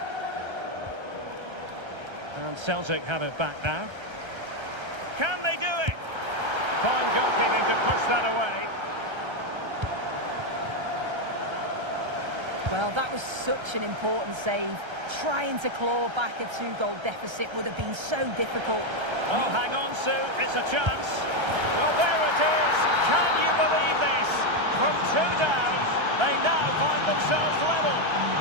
And Celtic have it back now. Can they do it? Fine goalkeeping to push that away. Well, that was such an important save. Trying to claw back a 2-goal deficit would have been so difficult. Oh, hang on, Sue. It's a chance. Well, there it is. Can you believe this? From 2 down, they now find themselves level.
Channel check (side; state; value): left; late; 1.3 ms